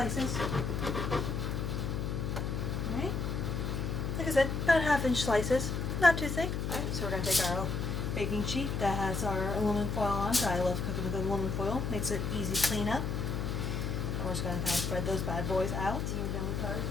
Alright. Like I said, about 1/2-inch slices. Not too thick. Alright, so we're going to take our baking sheet that has our aluminum foil on. So I love cooking with aluminum foil. Makes it easy cleanup. We're just going to kind of spread those bad boys out. We're done with our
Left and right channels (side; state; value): left; noise; hum, 1 dB below the sound